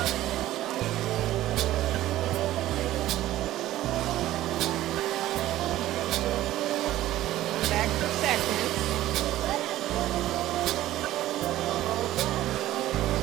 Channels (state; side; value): quieter; left; 14.6 dB